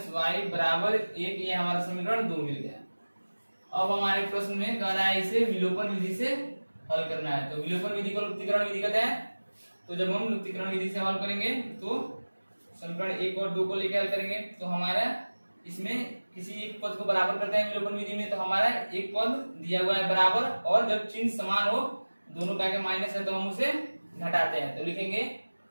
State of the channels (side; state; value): both; inverted; correlation -1.00